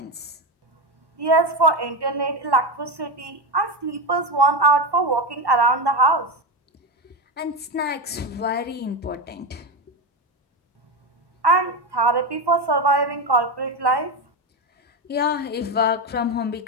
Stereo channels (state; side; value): normal; both; correlation 0.14